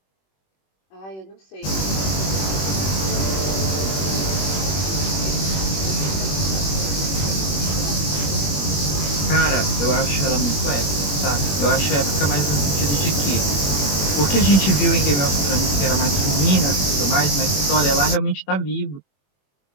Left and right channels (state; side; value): late; right; 21 ms